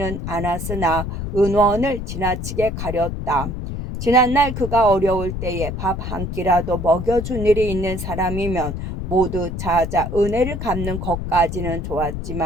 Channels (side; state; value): left; noise; rumble, 5 dB below the sound